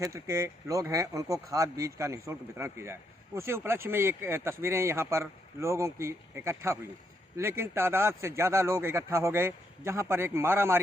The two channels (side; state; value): both; normal; correlation 0.76